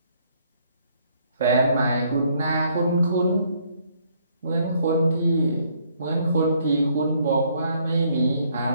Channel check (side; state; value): both; inverted; correlation -0.67